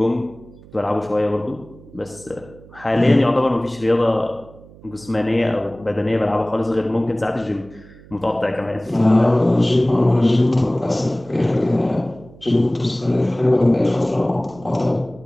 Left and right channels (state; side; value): noise; right; hum, 22 dB below the sound